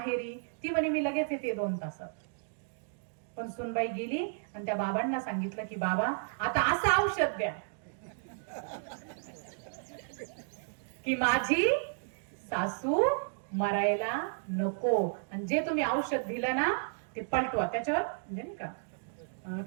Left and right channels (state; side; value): silent; left; digital silence